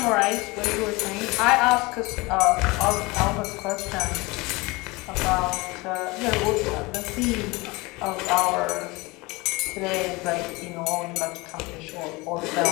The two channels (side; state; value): right; quieter; 24.0 dB